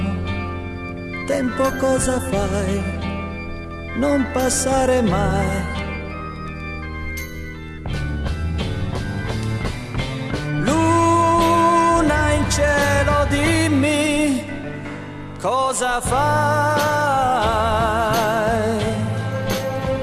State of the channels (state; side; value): identical; both; correlation 1.00